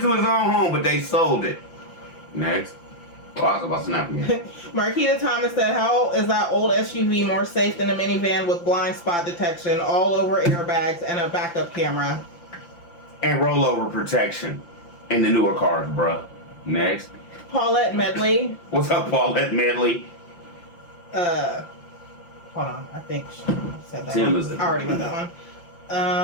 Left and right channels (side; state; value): right; late; 5.8 ms